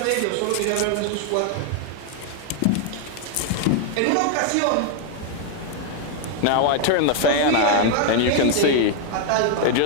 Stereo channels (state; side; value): different; both; correlation 0.00